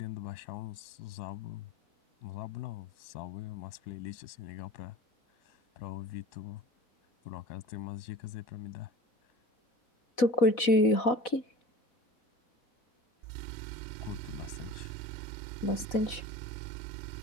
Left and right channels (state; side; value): late; right; 4.1 ms